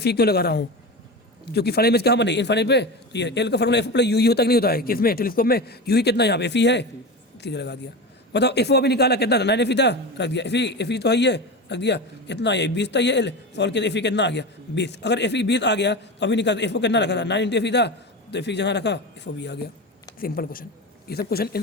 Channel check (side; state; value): both; normal; correlation 0.25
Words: E क्यों लगा रहा हूँ, क्योंकि फाइनल इमेज कहाँ बने इनफाइनाइट पे। तो ये एल का formula F O plus U ही होता कि नहीं होता है, किसमें टेलीस्कोप में, यू ही कितना यहाँ पे एफ ई है, सीधे लगा दिया। बताओ एफ ओ अभी निकाला कितना था 9 एफ ई था, रख दिया, एफ ई तो है ही है, रख दिया, कितना है 20 था, ये एल सॉल्व किया, एफ ई कितना आ गया 20। अगर एफ ई 20 आ गया तो अभी निकाल, एफ ओ कितना रखा था 9 इंटू एफ ई था, तो एफ ई जहाँ रखा एफ ओ भी आ गया। सिंपल क्वेश्चन, ये सब